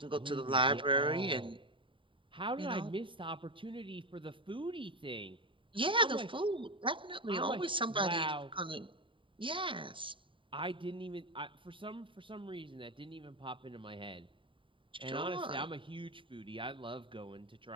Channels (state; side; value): late; left; 0.25 ms